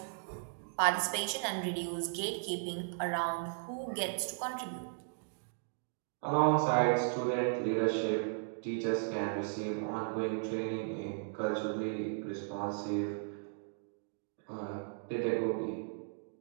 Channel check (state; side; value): silent; left; digital silence